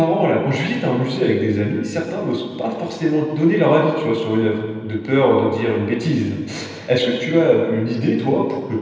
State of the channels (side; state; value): both; identical; correlation 1.00